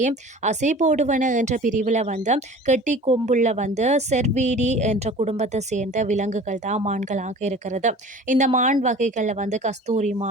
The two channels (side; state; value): both; normal; correlation 0.42